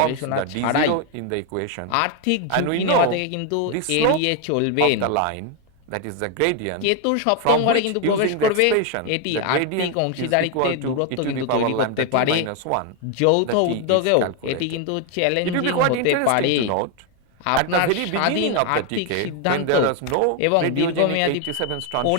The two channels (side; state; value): both; different; correlation 0.01